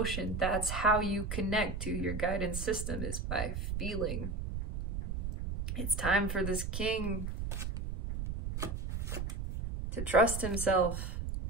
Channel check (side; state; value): right; noise; rumble, 4 dB below the sound